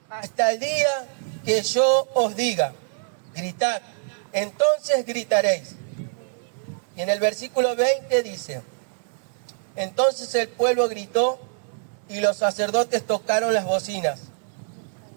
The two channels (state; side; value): silent; left; digital silence